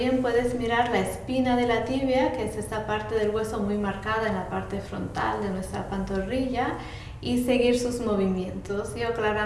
puedes mirar la espina de la tibia, que es esta parte del hueso muy marcada en la parte frontal de nuestra pantorrilla, y seguir sus movimientos. Yo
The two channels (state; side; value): identical; both; correlation 1.00